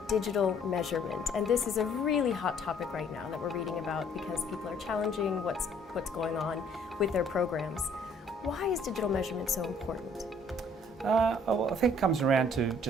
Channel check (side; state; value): both; normal; correlation 0.60